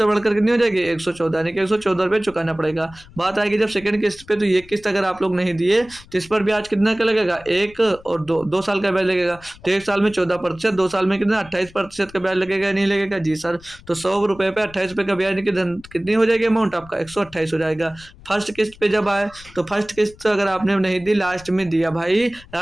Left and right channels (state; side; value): noise; left; rumble, 22 dB below the sound